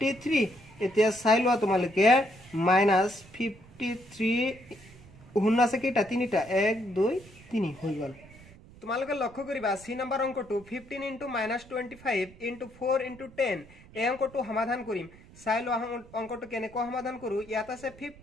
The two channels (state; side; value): noise; right; rumble, 22 dB below the sound